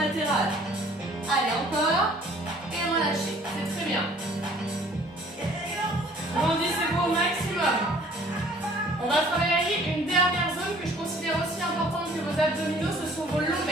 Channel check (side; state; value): both; normal; correlation 0.55